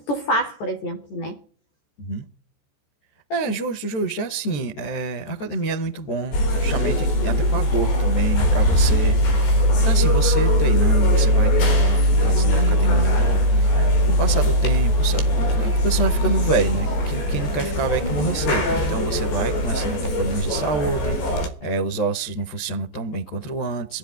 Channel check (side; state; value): right; late; 14 ms